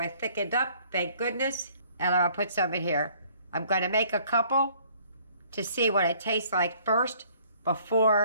thickened up, thank goodness, and I'll put some in here. I'm going to make a couple to see what it tastes like first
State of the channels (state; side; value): inverted; both; correlation -0.59